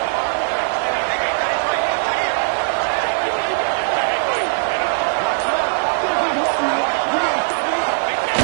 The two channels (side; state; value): left; silent; digital silence